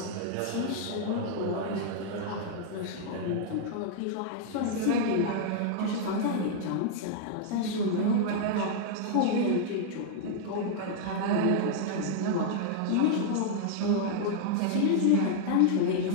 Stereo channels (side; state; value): both; different; correlation -0.01